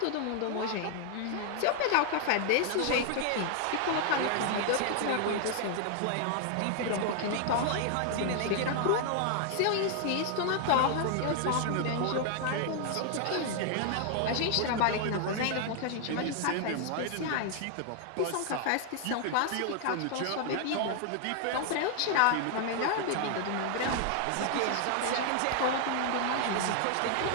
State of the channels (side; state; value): both; different; correlation 0.00